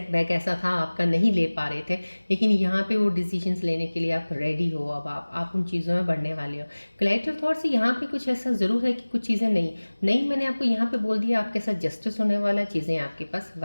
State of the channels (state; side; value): inverted; both; correlation -1.00